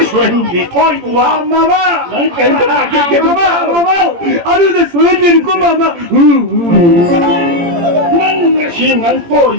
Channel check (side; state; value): left; late; 17 ms